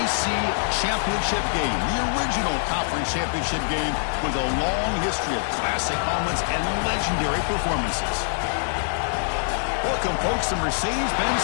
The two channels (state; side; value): silent; right; digital silence